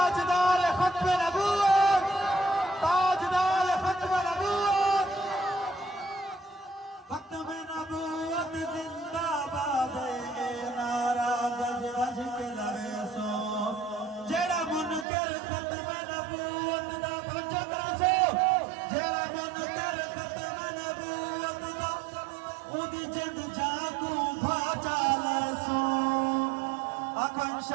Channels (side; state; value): left; drops out; at 15.1 s